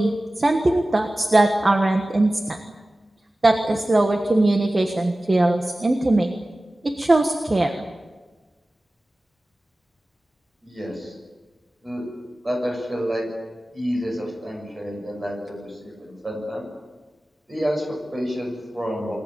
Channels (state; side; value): normal; both; correlation 0.96